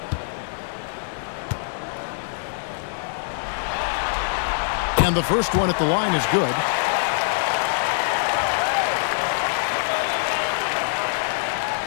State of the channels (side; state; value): right; silent; digital silence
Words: And the first one at the line is good.